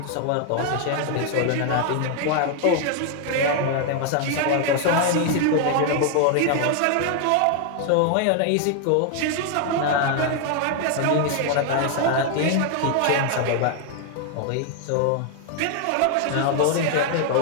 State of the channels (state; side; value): different; both; correlation 0.00